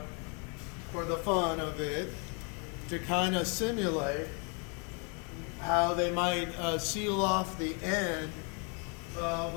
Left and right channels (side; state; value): right; quieter; 36.7 dB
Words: the fun of it, to kind of simulate how they might seal off the end of